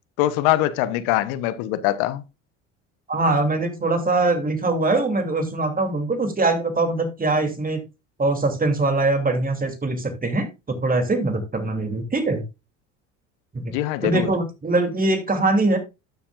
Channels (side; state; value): both; normal; correlation 0.33